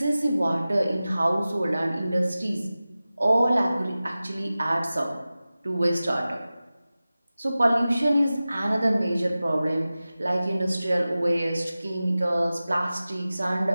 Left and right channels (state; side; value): inverted; both; correlation -0.96